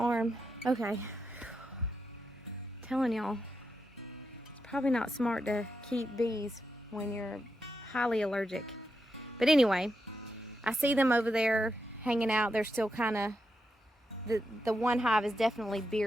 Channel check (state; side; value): normal; both; correlation 0.85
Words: Okay, telling y'all, it's probably not smart to keep bees when you're highly allergic. But anyway, I see them over there hanging out. They're still kind of, the one hive is definitely